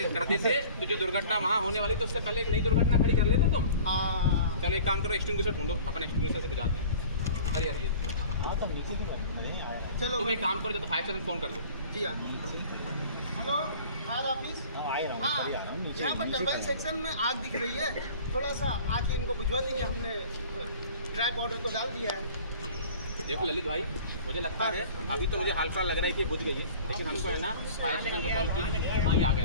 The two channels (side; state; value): both; inverted; correlation -0.44